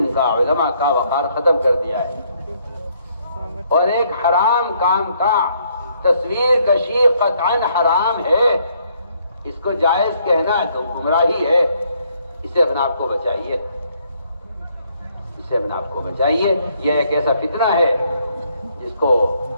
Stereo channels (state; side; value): inverted; both; correlation -0.69